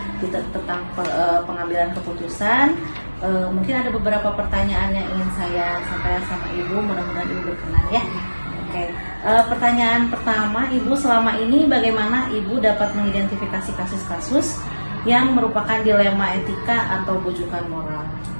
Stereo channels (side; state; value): both; inverted; correlation -1.00